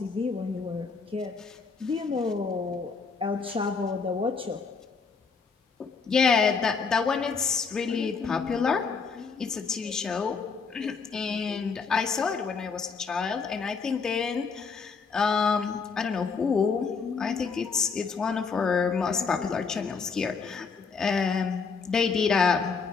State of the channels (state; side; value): quieter; right; 5.2 dB